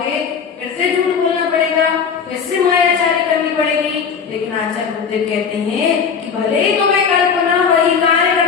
फिर से झूठ बोलना पड़ेगा, फिर से मायाचारी करनी पड़ेगी। लेकिन आचार्य बुद्धदेव कहते हैं कि भले ही तुम्हें कल्पना वही कार्य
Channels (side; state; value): right; quieter; 6.4 dB